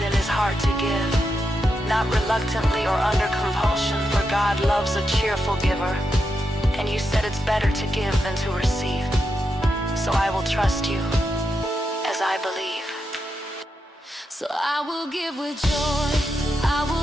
in his heart to give, not reluctantly or under compulsion, for God loves a cheerful giver. And you said it's better to give than to receive. So I will trust you as I believe. So I will give with joy, I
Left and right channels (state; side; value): normal; both; correlation 0.85